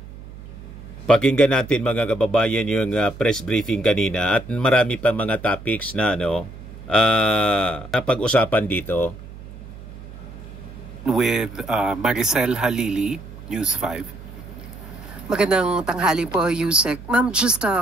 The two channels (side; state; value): right; noise; hum, 15 dB below the sound